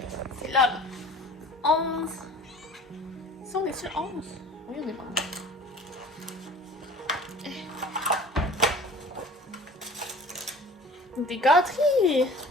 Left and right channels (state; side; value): normal; both; correlation 0.45